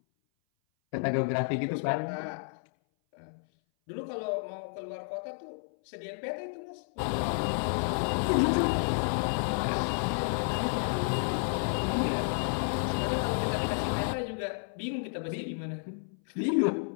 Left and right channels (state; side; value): silent; right; 57 dB below the other